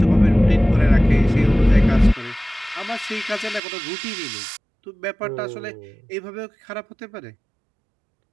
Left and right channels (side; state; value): left; drops out; at 3.6 s